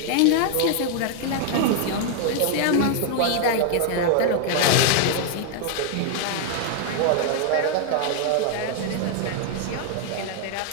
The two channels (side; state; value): both; different; correlation 0.00